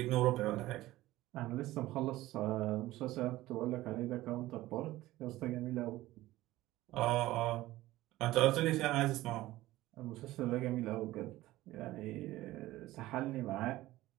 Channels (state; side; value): quieter; left; 16.8 dB